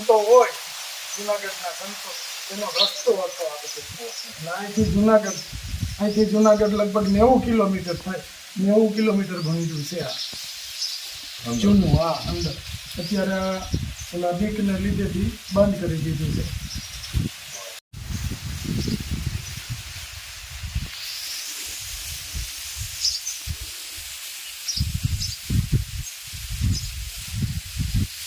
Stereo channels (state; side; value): identical; both; correlation 1.00